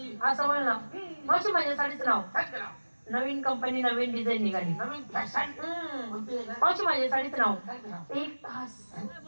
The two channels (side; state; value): both; inverted; correlation -1.00